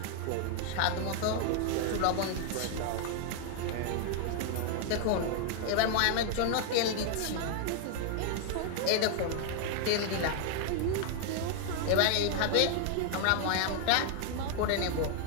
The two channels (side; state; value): both; different; correlation 0.00